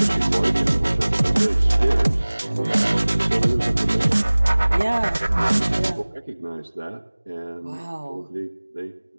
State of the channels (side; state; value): both; inverted; correlation -1.00